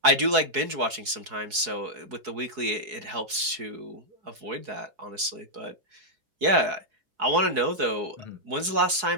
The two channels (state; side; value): late; left; 4.7 ms